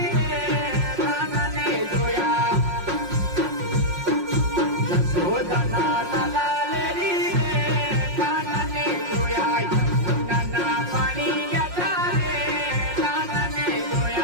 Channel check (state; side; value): late; left; 5.6 ms